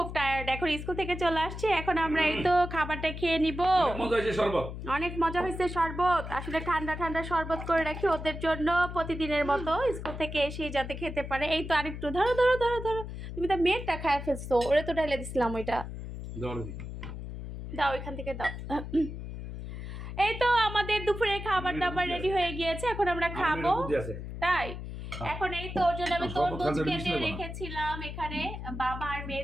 এখন স্কুল থেকে চলে আসছে। এখন আমরা এই তো খাবারটা খেয়ে নিব। অনেক মজা হয়েছে শরবত। আসলে ঠান্ডা ঠান্ডা শরবত করে রাখি ওদের জন্য প্রতিদিনের মতো, স্কুল থেকে এসে যাতে খেতে পারে। এই তো আরেকটু ধরো ধরো ধরো ধরো, তুমি তো মেয়েরটা খায় ফেলছো, ওরে তো ঢেলে দিছিলাম ওইটা। দাও ওইখান থেকে দাও। এই তো আমাদের দুপুরে খাবার দাবার রেডি হয়ে গিয়েছে, এখন আমরা খাবো। তাই এখন এই তো ওর জন্য আমি তরমুজ কেটে রেখেছিলাম এখানে বাবা আর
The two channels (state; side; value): noise; left; hum, 8 dB below the sound